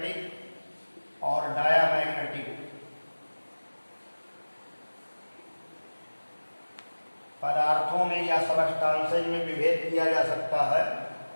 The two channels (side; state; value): both; inverted; correlation -1.00